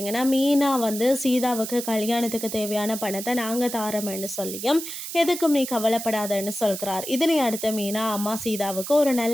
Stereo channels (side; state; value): right; noise; hiss, 8 dB below the sound